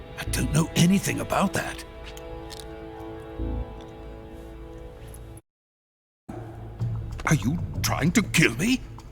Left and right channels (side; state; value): both; identical; correlation 1.00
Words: I don't know anything about that. Are you trying to kill me?